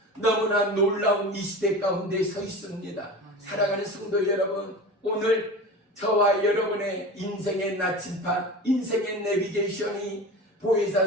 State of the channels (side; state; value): both; normal; correlation 0.32